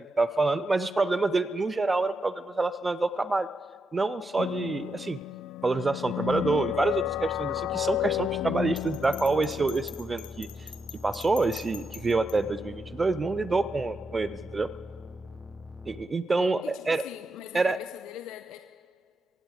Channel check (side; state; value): both; normal; correlation 0.83